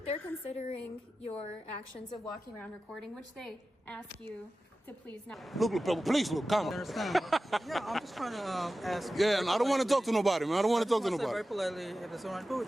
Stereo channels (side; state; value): both; normal; correlation 0.94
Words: considering your actions of walking around recording, which they ask you to please not. Look, please look, come on. Understand? Yeah, I'm just trying to ask. Yeah, and I don't want to talk to nobody, man. I don't want to talk to Very nobody. politely, if it's alright, cool.